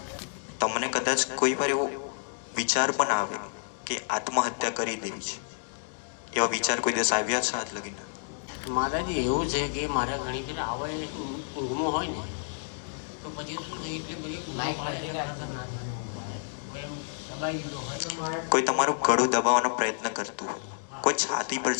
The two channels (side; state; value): right; silent; digital silence